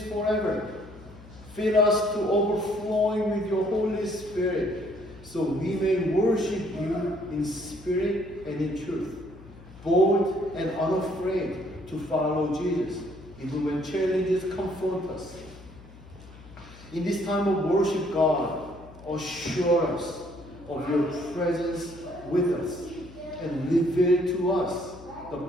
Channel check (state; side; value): noise; left; hum, 20 dB below the sound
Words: forever. Fill us to overflowing with your Holy Spirit, so we may worship you in spirit and in truth, bold and unafraid to follow Jesus, even when challenges confront us. In this time of worship, God, assure us of your presence with us and reveal to us the